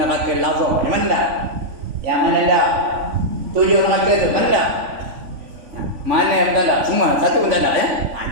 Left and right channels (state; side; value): late; left; 3.5 ms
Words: Lazar. Yang mana dah? Yang mana dah? 7 neraka tu mana dah? Mana yang tak ada? Semua satu pun tak ada ya.